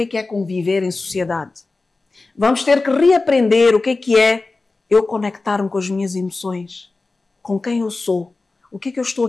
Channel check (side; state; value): right; quieter; 3.6 dB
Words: é conviver em sociedade. Vamos ter que reaprender o que é eu conectar-me com as minhas emoções, com quem eu sou, o que eu estou